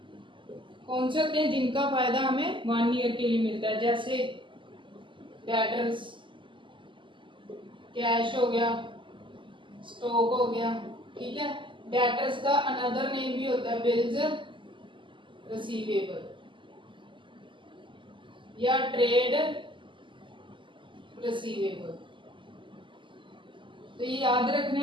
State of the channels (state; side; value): late; left; 0.24 ms